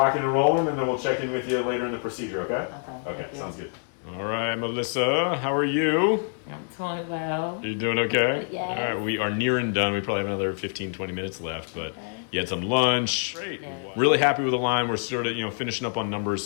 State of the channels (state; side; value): silent; right; 61 dB below the other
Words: and rolling, and then we'll check in with you later in the procedure, okay? Okay, sounds good. All right, Melissa, how are you? I'm doing well. You doing okay? Yes. All right, we are near and done. We probably have another 15, 20 minutes left, but you had some lunch. Great. Yeah. Really happy with the line. We're sort of, finishing up on numbers,